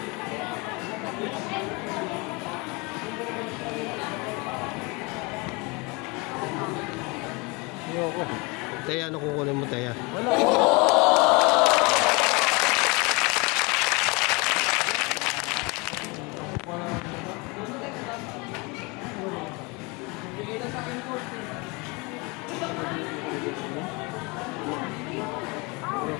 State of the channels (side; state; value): right; quieter; 27.7 dB